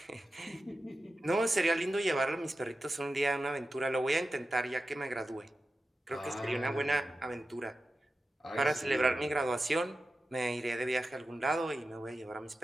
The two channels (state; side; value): normal; both; correlation 0.92